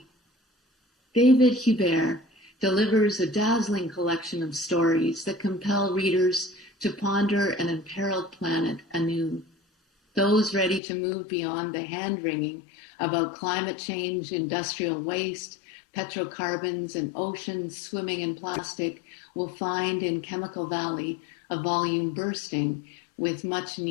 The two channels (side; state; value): right; drops out; at 10.8 s